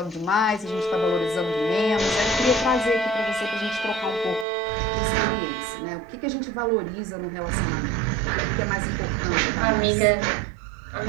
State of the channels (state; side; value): drops out; left; at 4.5 s